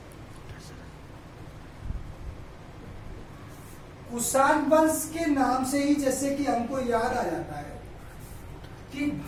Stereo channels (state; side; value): identical; both; correlation 1.00